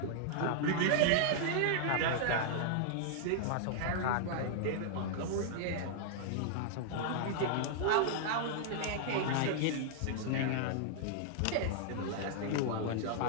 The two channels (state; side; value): different; both; correlation -0.01